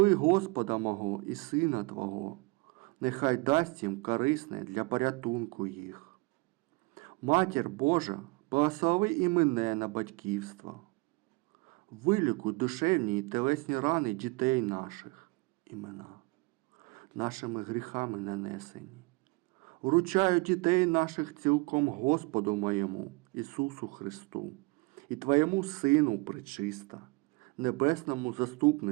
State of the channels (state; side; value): quieter; left; 26.8 dB